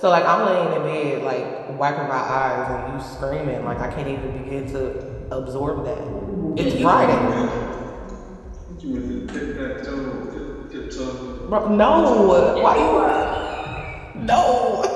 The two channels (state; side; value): identical; both; correlation 1.00